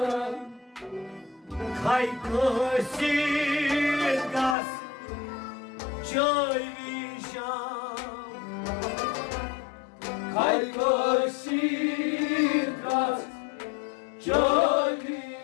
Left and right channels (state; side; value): drops out; right; at 4.5 s